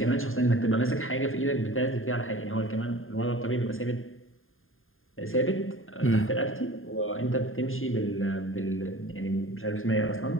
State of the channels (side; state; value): right; late; 0.60 ms